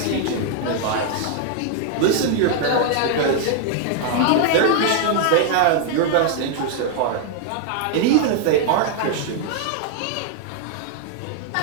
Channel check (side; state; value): both; different; correlation 0.00